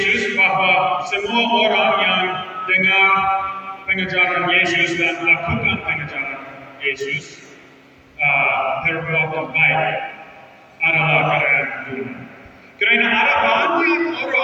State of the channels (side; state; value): both; identical; correlation 1.00